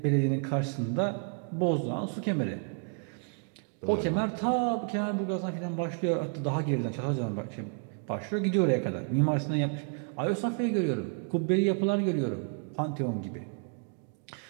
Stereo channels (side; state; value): left; quieter; 39.6 dB